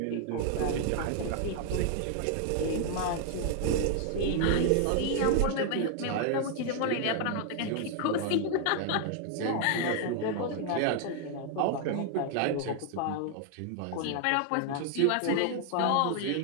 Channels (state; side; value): different; both; correlation 0.00